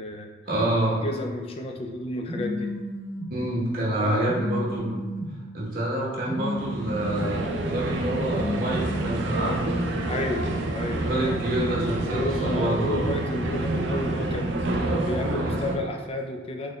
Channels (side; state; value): both; normal; correlation 0.56